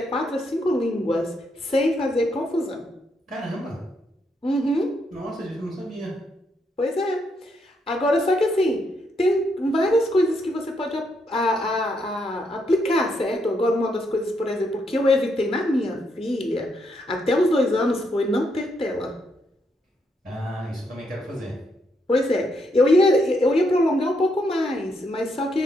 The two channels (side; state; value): both; normal; correlation 0.77